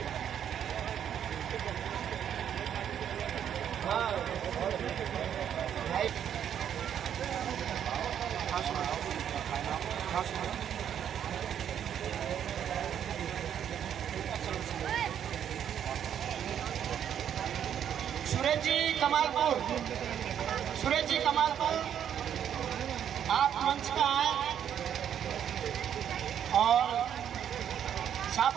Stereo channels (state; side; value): quieter; left; 9.2 dB